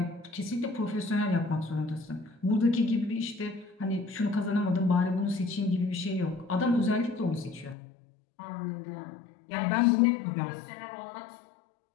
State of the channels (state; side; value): drops out; right; at 7.8 s